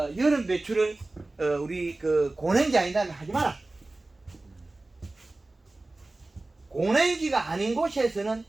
여름 배추를 우리 그 고냉지 아니다면 하지 마라. 고냉지가 아닌 곳에서는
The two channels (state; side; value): quieter; left; 3.0 dB